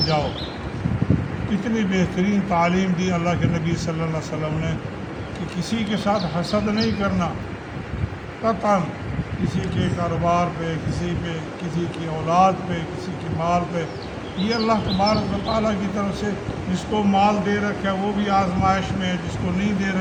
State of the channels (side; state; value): both; identical; correlation 1.00